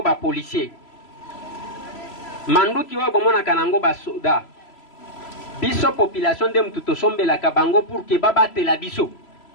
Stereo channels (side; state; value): right; late; 3.0 ms